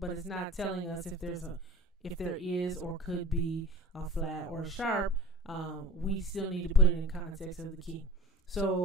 it's not telling us if there is or could be a flat or a sharp. We still need to put it in context of the key.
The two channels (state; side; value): normal; both; correlation 0.39